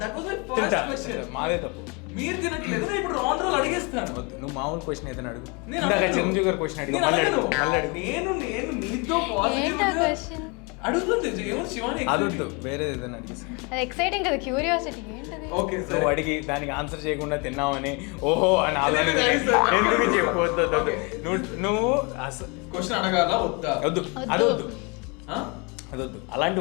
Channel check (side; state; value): right; quieter; 30.8 dB